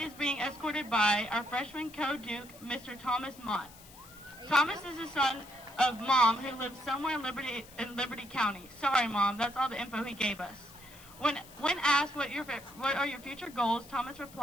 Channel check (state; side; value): noise; left; hiss, 20 dB below the sound